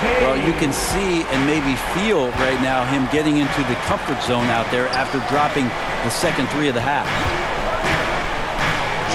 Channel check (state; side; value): identical; both; correlation 1.00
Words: Well, you can see and maybe feel right now him getting into the comfort zone out there after dropping the second 3 of the half.